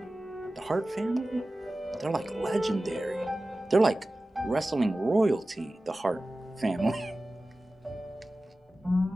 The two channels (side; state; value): both; normal; correlation 0.96